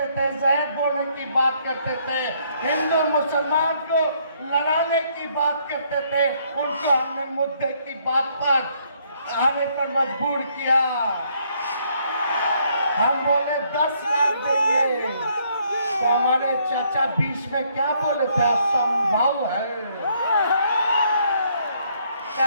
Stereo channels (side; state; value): both; inverted; correlation -0.69